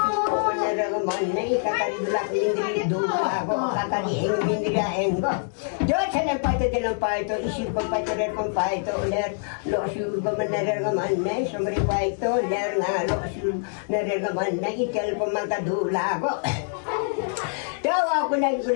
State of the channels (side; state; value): right; silent; digital silence